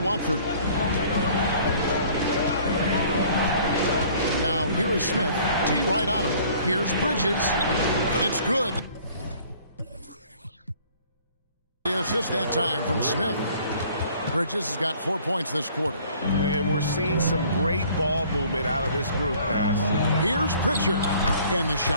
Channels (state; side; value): inverted; both; correlation -0.54